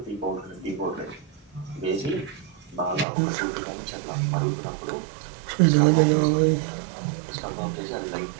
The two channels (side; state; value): left; drops out; at 3.1 s